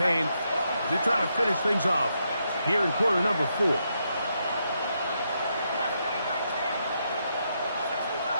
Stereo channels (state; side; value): inverted; both; correlation -0.80